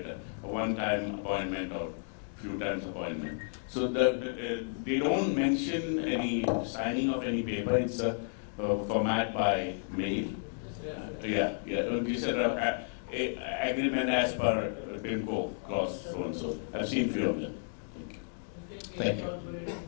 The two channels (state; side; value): silent; right; digital silence